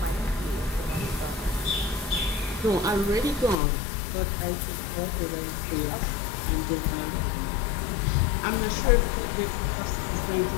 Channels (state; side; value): drops out; right; at 3.6 s